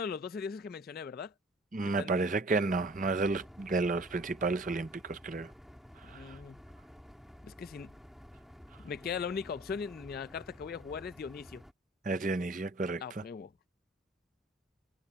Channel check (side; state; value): both; normal; correlation 0.48